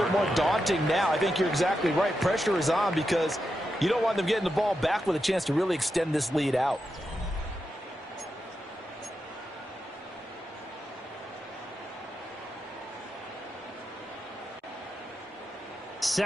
bit more daunting now. I think you're exactly right. Pressure is on because you don't want them getting the ball back with a chance to really extend this lead out.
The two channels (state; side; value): normal; both; correlation 0.87